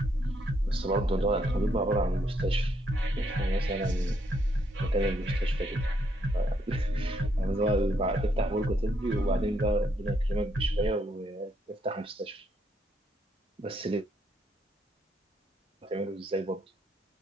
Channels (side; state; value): both; normal; correlation 0.74